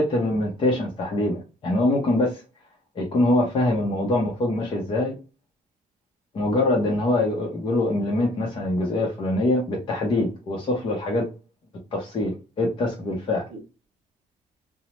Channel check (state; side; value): normal; both; correlation 0.57